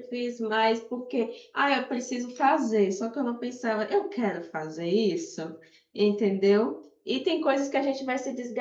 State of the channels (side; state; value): both; identical; correlation 1.00